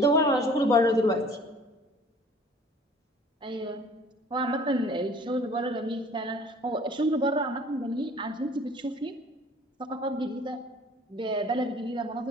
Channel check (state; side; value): normal; both; correlation 0.51